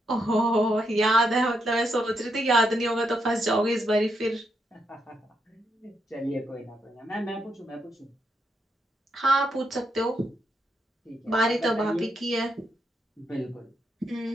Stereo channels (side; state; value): both; normal; correlation 0.80